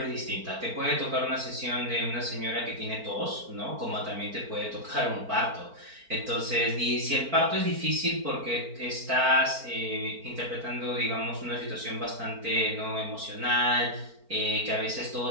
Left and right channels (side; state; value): left; late; 4.4 ms